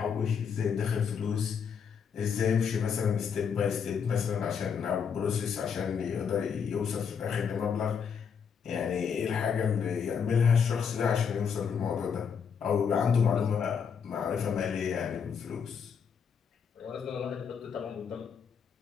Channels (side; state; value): right; quieter; 6.8 dB